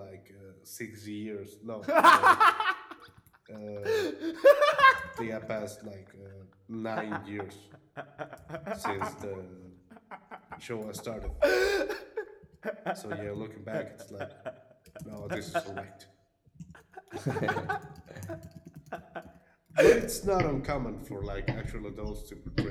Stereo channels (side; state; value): both; identical; correlation 1.00